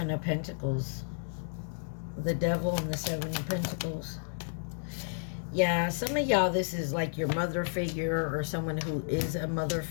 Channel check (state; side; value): silent; right; digital silence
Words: of Pentacles. The Devil and the 7 of Pentacles. Yeah, some of y'all, this is like your mother figure or someone who is a mother